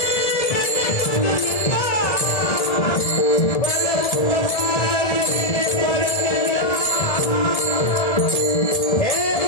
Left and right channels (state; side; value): late; right; 1.7 ms